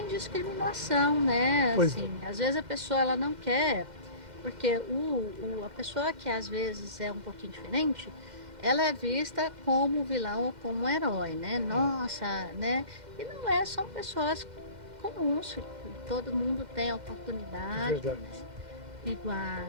discriminação, né? Assim, às vezes a pessoa ela não quer, porque a pessoa que às vezes é um pouquinho diferente, ela é vista como vilão ou como um herói, né? Nossa, né? E não é, são pessoas comuns, todo mundo tem a É oportunidade, verdade. né?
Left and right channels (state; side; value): late; left; 2.1 ms